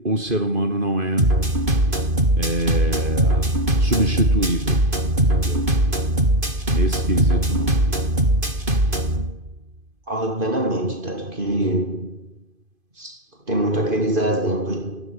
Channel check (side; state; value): left; late; 2.5 ms